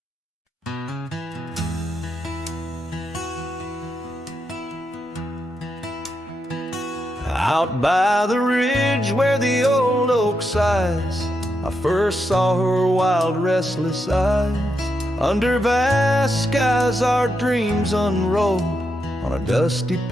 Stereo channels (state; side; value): normal; both; correlation 0.83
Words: Out by the ridge where the old oak sighs, I first saw her wild, restless eyes. Under vast skies our dreams unrolled, on a dusty